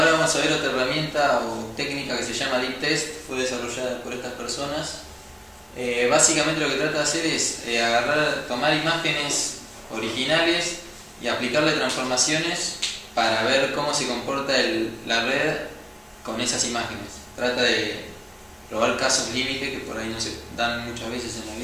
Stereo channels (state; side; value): identical; both; correlation 1.00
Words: vamos a ver otra herramienta o técnica que se llama Deep Test, fue desarrollada por estas personas. Básicamente lo que trata de hacer es tomar imágenes originales y aplicarle transformaciones para ver cómo se comporta la red con esas imágenes. Trata de probar casos límite que por ahí no se dan muchas veces en la